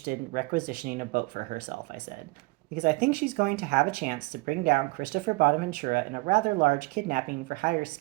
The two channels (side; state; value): left; quieter; 25.2 dB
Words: in requisitioning a boat for herself," I said, "because I think she's going to have a chance to bring down Christopher Bonaventura in a rather large kidnapping for hire